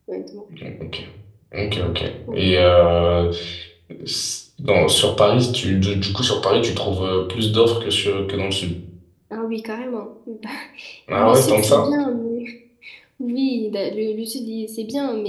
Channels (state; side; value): identical; both; correlation 1.00